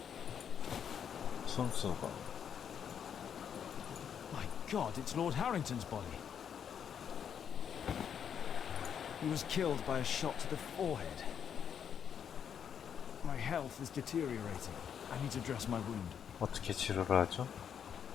순수가. My God, it's Lord Harrington's body. He was killed by a shot to the forehead. My health is deteriorating. I need to dress my wound. 어떻게 치료를 하죠?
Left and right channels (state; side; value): quieter; right; 8.2 dB